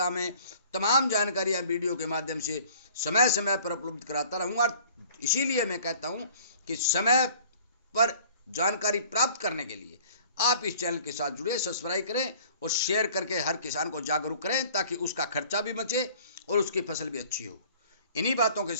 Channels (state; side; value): inverted; both; correlation -0.51